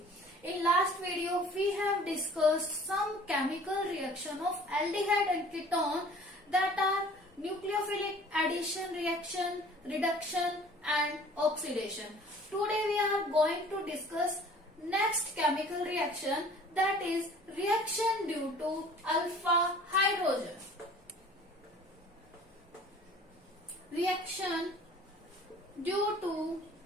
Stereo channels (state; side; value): normal; both; correlation 0.49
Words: In last video we have discussed some chemical reaction of aldehyde and ketone that are nucleophilic addition reaction, reduction and oxidation. Today we are going to discuss next chemical reaction, that is reaction due to alpha hydrogen. Reaction due to